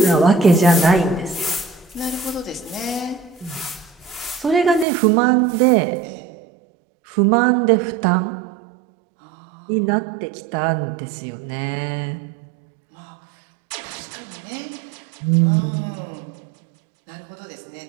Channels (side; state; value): left; drops out; at 4.9 s